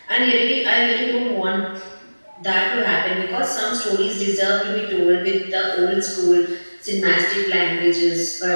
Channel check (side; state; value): both; inverted; correlation -1.00